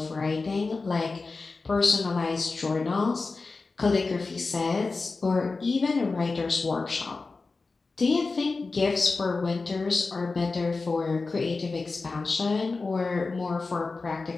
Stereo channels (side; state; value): right; quieter; 3.9 dB